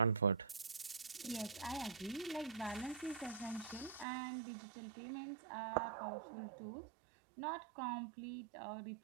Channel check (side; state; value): left; drops out; at 4.0 s